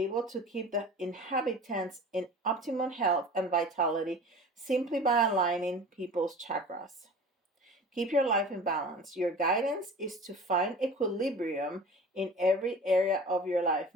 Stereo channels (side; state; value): both; normal; correlation 0.39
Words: to keep the inhabitants in optimum health and vitality simply by aligning people's chakras. Keep your life in balance. Your guidance is to find equilibrium in every area of your life.